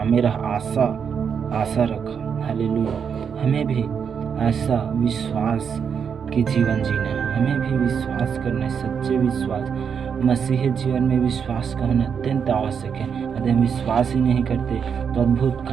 रहा, आशा रखा। हालेलुया। हमें भी ऐसा विश्वास के जीवन जीना है। हमें भी विश्वास करना है, सच्चे विश्वास। मसीही जीवन में विश्वास का होना अत्यंत आवश्यक है। यदि हम विश्वास ही नहीं करते तो अद्भुत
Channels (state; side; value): quieter; left; 6.9 dB